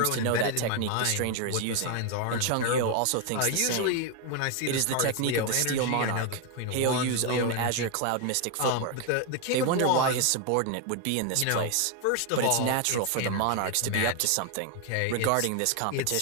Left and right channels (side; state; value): both; different; correlation 0.01